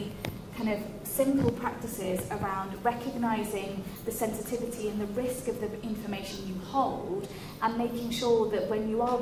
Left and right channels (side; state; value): both; identical; correlation 1.00